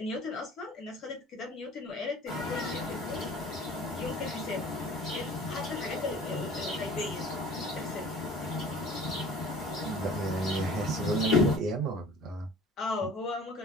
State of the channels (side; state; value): both; normal; correlation 0.45